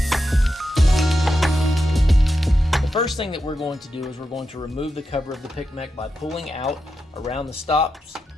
The first thing that we're going to do is we're going to remove the cover of the P.I.C Mech by pulling out around the stops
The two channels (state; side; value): normal; both; correlation 0.87